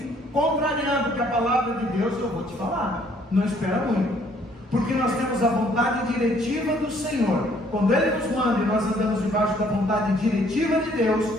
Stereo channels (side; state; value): both; normal; correlation 0.62